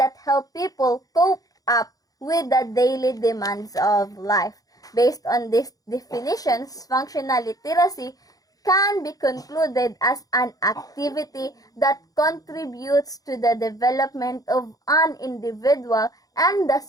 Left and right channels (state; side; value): late; right; 0.18 ms